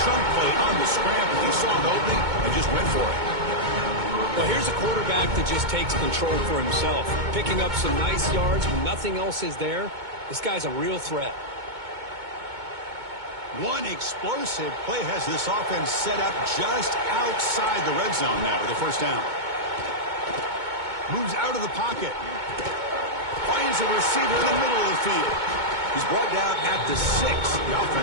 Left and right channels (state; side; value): late; left; 2.2 ms